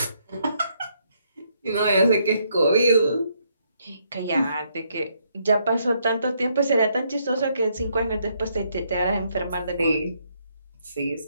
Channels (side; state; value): both; inverted; correlation -0.73